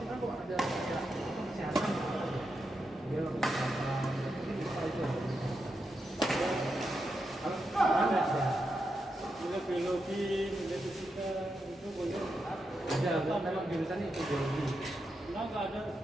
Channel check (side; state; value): both; normal; correlation 0.86